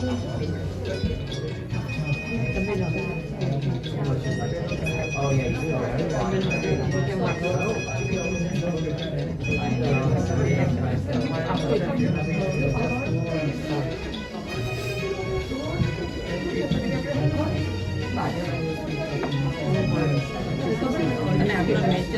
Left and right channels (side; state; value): both; identical; correlation 1.00